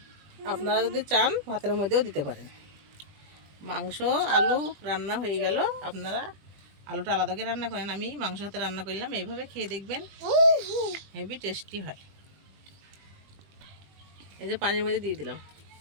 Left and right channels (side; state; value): left; late; 21 ms